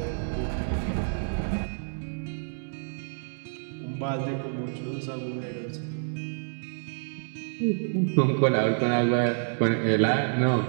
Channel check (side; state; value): left; silent; digital silence